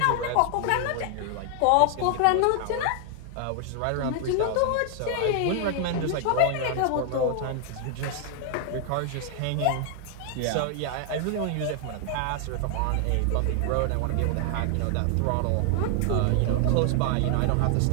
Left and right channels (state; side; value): different; both; correlation 0.00